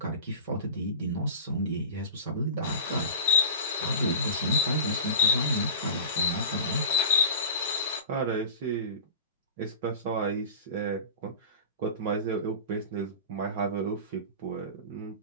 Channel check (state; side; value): inverted; both; correlation -0.33